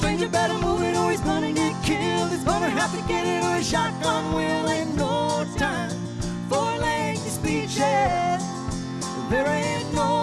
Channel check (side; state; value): both; identical; correlation 1.00